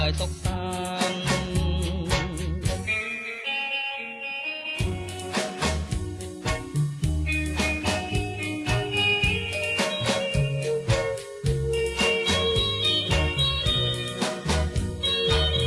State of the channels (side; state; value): both; identical; correlation 1.00